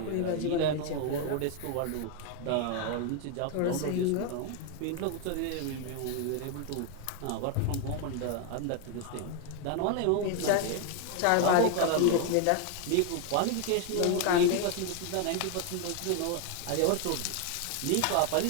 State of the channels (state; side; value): different; both; correlation 0.01